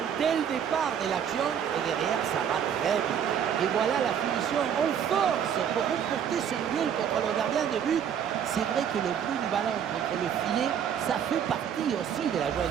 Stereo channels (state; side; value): quieter; left; 8.5 dB